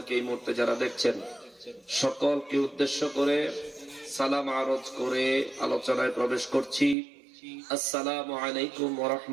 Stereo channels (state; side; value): drops out; left; at 7.0 s